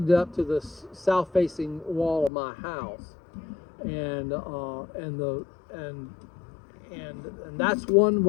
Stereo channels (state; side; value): drops out; right; at 2.3 s